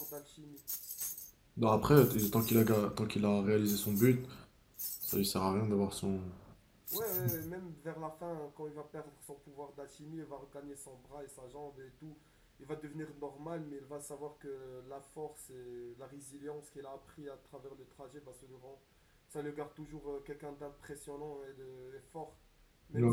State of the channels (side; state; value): both; identical; correlation 1.00